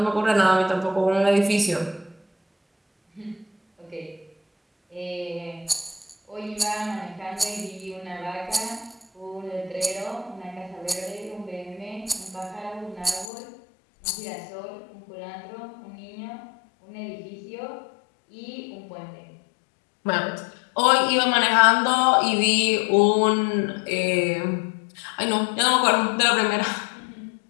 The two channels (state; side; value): drops out; right; at 13.3 s